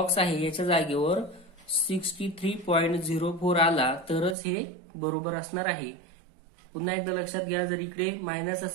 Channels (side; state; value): left; drops out; at 4.4 s